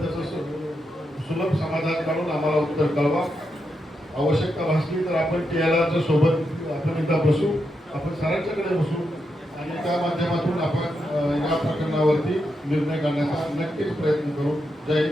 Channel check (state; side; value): normal; both; correlation 0.84